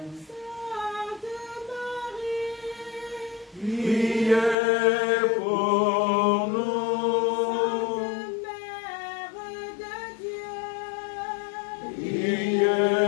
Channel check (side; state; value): right; drops out; at 4.5 s